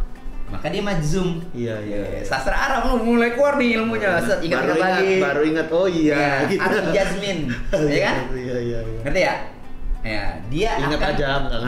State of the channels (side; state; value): both; identical; correlation 1.00